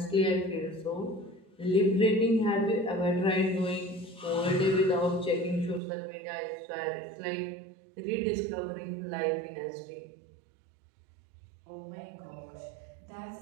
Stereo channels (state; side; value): drops out; left; at 5.8 s